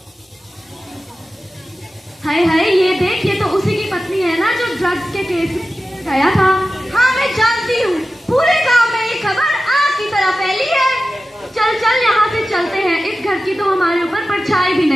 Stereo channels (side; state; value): both; normal; correlation 0.94